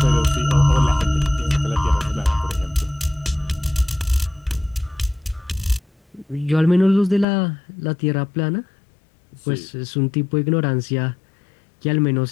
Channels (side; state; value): right; drops out; at 7.2 s